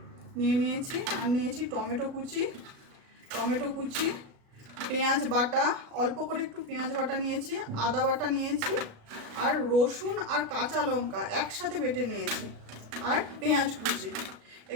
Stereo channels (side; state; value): left; late; 37 ms